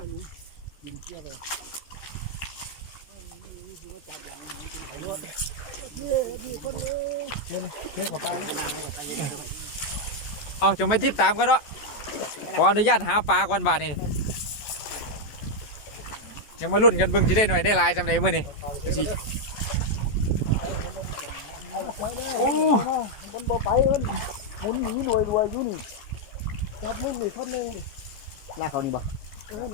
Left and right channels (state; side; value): late; right; 14 ms